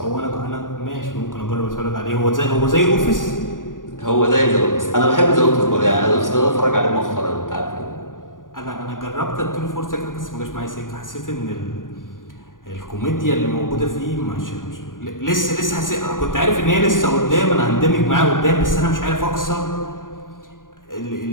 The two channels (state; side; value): late; right; 0.89 ms